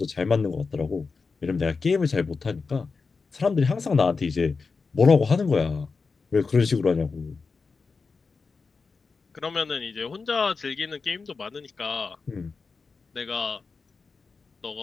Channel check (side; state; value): right; quieter; 4.6 dB